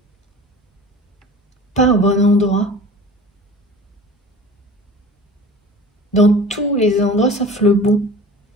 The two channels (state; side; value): normal; both; correlation 0.40